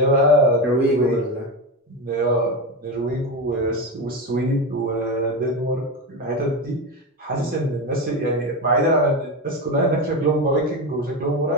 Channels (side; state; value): both; normal; correlation 0.17